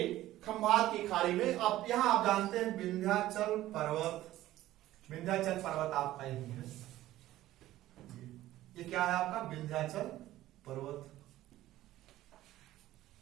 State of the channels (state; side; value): quieter; left; 14.9 dB